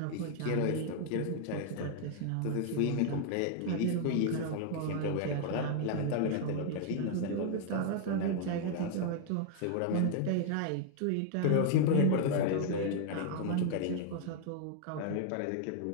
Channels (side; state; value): both; different; correlation 0.00